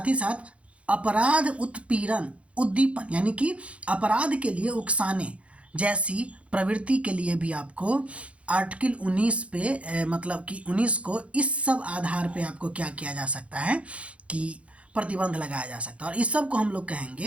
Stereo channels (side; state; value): left; late; 0.062 ms